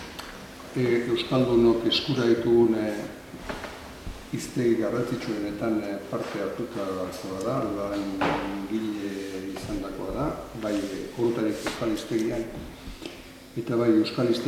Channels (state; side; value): identical; both; correlation 1.00